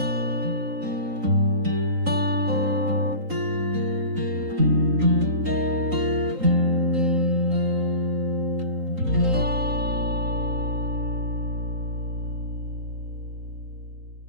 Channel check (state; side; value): late; left; 3.9 ms